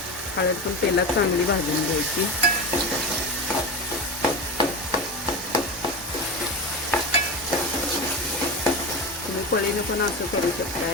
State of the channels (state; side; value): normal; both; correlation 0.22